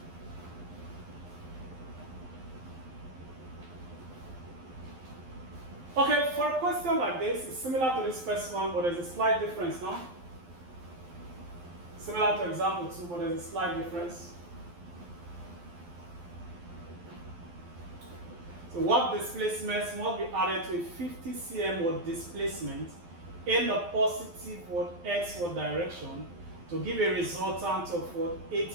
Okay, for a question like this, it's similar to this first one, but there's a slight difference now. Similar to example 2, but there's a slight difference. So what displacements must be added to a 50 cm displacement in the positive x direction to give a resultant of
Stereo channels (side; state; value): left; late; 12 ms